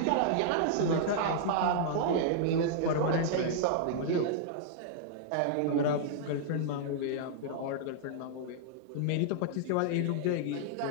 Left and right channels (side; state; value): both; different; correlation -0.01